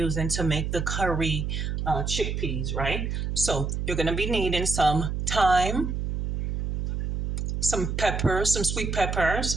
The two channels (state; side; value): noise; right; hum, 2 dB below the sound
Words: to make the curry chickpeas, right? So you're going to be needing some thyme, some peppers, some sweet